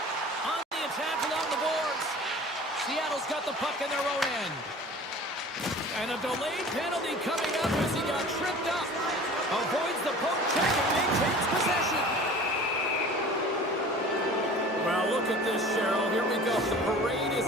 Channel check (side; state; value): both; normal; correlation 0.43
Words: On the attack along the boards. Seattle's got the puck in their own end. And a delayed penalty coming up as he got tripped up. Avoids the poke check and maintains possession. Well, look at this, Cheryl. Here we go. The parade